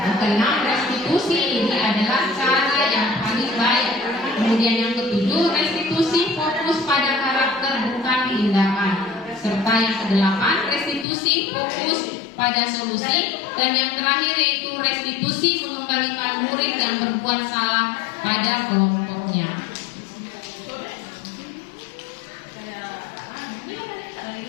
keenam, restitusi ini adalah cara yang paling baik. Kemudian yang ketujuh, restitusi fokus pada karakter bukan tindakan. Serta yang kedelapan, restitusi fokus pada solusi. Dan yang terakhir yaitu restitusi mengembalikan murid yang berbuat salah pada kelompoknya.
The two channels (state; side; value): drops out; right; at 11.1 s